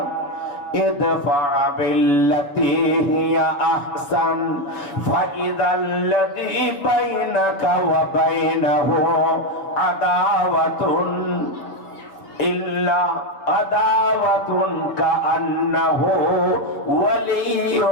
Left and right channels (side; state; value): right; late; 7.1 ms